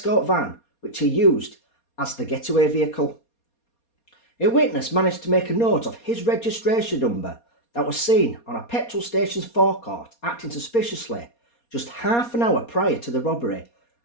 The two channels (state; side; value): late; right; 4.2 ms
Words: van, which he used as the getaway vehicle. A witness managed to make a note of his registration number that was seen on a petrol station's forecourt acting suspiciously just half an hour prior to the robbery